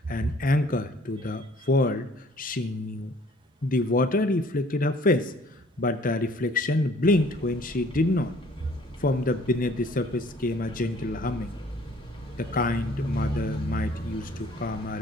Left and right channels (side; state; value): both; normal; correlation 0.56